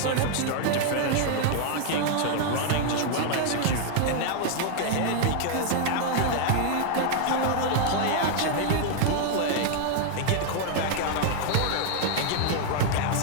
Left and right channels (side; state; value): both; different; correlation 0.00